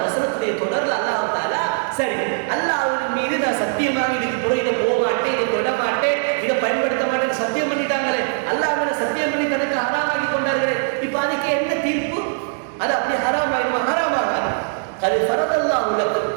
வசனத்துடைய தொடர்ல அல்லாஹ் தஆலா சரி அல்லாஹ் மீது நான் சத்தியமாக இதுக்கு பிறகு இதை போக மாட்டேன், இதை தொட மாட்டேன், இதை பயன்படுத்த மாட்டேன்னு சத்தியம் பண்ணிட்டாங்களே, அல்லாஹ் மேல சத்தியம் பண்ணி தனக்கு ஹராமாக்கி கொண்டார்களே, இப்ப அதுக்கு என்ன தீர்ப்பு? அது அப்படி ஹராமாயிருமா? ஹராமாகாது. அது ஃபரதல்லாஹு லக்கும்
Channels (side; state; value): left; silent; digital silence